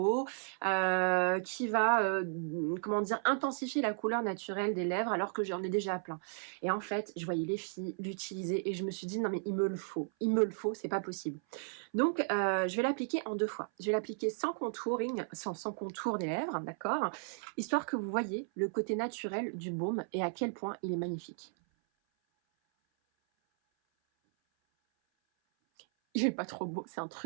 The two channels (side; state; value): left; silent; 55 dB below the other